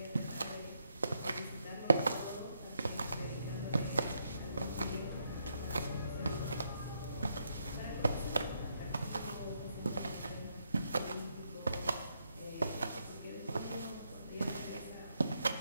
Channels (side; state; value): both; inverted; correlation -0.78